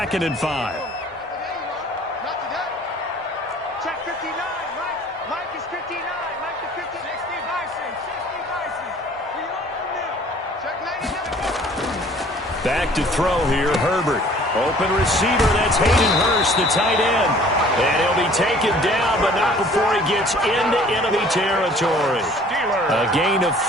and 5. Check 59. Mike is 59. Mike to 50. 60 Bison. 60 Bison. We own them. Check 99. Back to throw here, Herbert. Open receiver, that's Hayden Hurst, the tight end. And he'll be taken down, but not before he gets into enemy territory. A gain of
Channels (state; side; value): normal; both; correlation 0.52